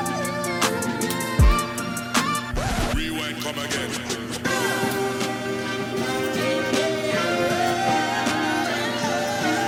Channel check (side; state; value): both; identical; correlation 1.00